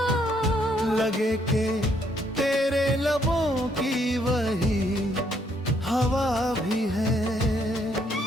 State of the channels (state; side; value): normal; both; correlation 0.70